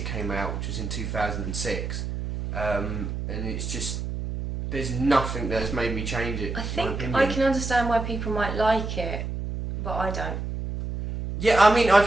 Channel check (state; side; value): noise; right; hum, 5 dB below the sound